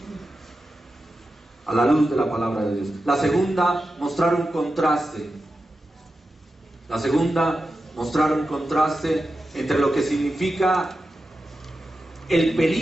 a la luz de la palabra de Dios. La segunda, mostrar un contraste. La segunda, mostrar un contraste entre lo que significa el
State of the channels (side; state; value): both; normal; correlation 0.91